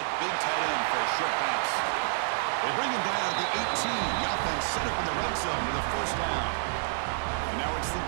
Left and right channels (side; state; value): left; silent; digital silence